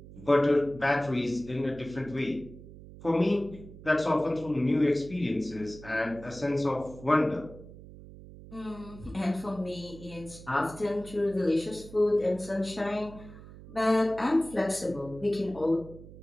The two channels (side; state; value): right; noise; hum, 17 dB below the sound